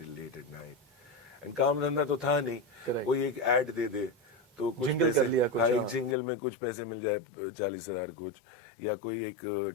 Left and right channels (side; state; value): right; drops out; at 6.2 s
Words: late at night. And काम धंधा तो था नहीं. Correct. कोई एक ऐड दे दे तो कुछ Jingle पैसे, कर लिया कुछ, हाँ, एक हाँ. जिंगल में कुछ पैसे मिल जाए, 40,000 कुछ, या कोई एक